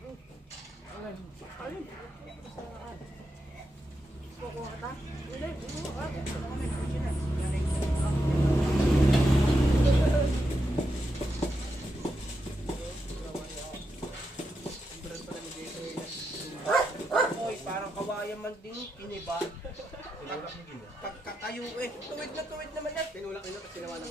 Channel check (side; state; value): both; normal; correlation 0.85